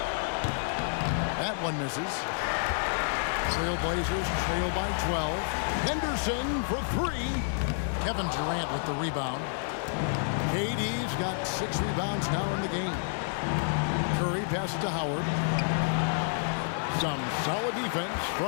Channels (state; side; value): silent; right; digital silence